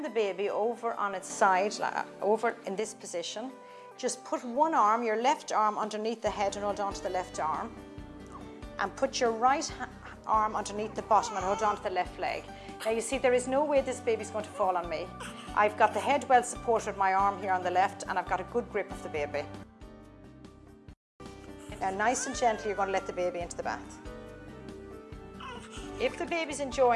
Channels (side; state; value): both; identical; correlation 1.00